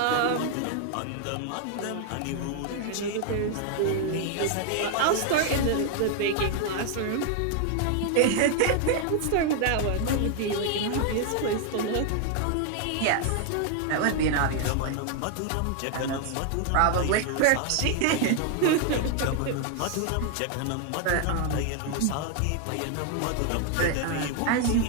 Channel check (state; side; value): different; both; correlation 0.00